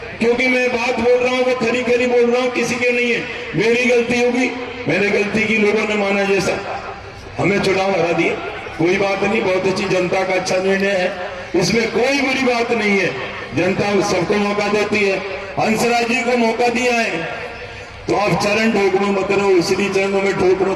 क्योंकि मैं बात बोल रहा हूं वो खरी खरी बोल रहा हूं, किसी के नहीं है। मेरी गलती होगी, मैंने गलती की, लोगों ने माना जैसा, हमें चुनाव हरा दिए, कोई बात नहीं। बहुत अच्छी, जनता का अच्छा निर्णय है, इसमें कोई बुरी बात नहीं है। जनता सबको मौका देती है, हंसराज जी को मौका दिया है। तो आप चरण ठोकरो मत रहो, इसलिए चरणों में ठोक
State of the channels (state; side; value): identical; both; correlation 1.00